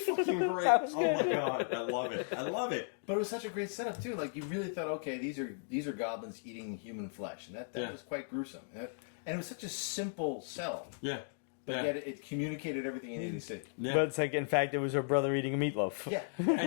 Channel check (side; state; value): right; silent; digital silence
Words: great. That was Oh my good. god, I love it. I love it. But it was such a great setup too. Like you really thought, okay, these are goblins eating human flesh, and that Yeah. was quite gruesome. And it was such a simple sell, Yeah. but yeah. yet it communicated everything you needed to see. Yeah. But it's like, in fact, it was her brother eating a meatloaf. Yeah,